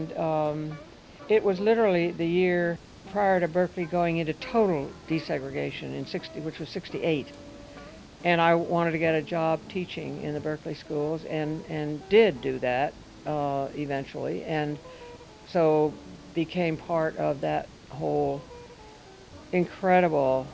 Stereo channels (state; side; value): identical; both; correlation 1.00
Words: it was literally the year prior to Berkeley going into total desegregation which was 68. And I wanted to get a job teaching in the Berkeley schools and did do that eventually. And so became part of that whole incredible